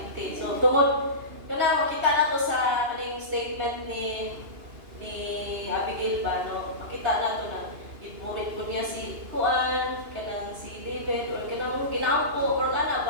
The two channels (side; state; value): left; late; 2.9 ms